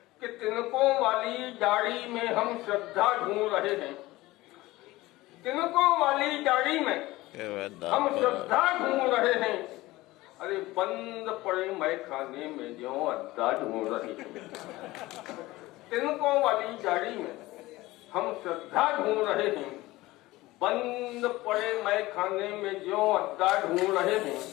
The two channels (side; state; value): right; quieter; 18.8 dB